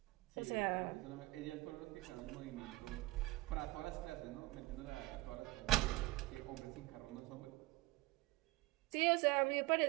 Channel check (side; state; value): left; quieter; 19.7 dB